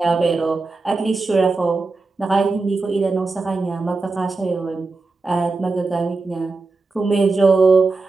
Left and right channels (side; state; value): left; quieter; 3.8 dB